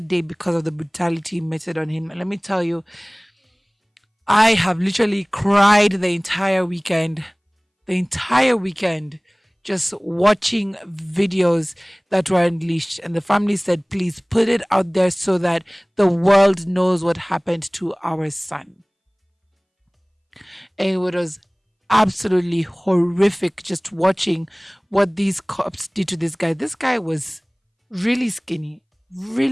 because of the brutality meted on him. And let me tell you, I have literally cried the entire weekend, just watching videos that were unleashed. And the family said, please put it out there so that the world knows what happened to our son. And it was absolutely horrific just watching what these cops did to this guy. This guy was really skinny,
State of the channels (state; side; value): identical; both; correlation 1.00